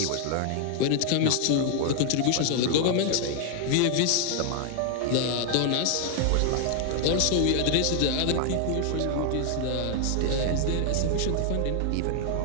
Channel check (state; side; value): different; both; correlation 0.00